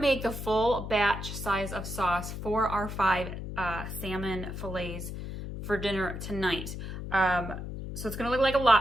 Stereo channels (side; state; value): left; noise; hum, 7 dB below the sound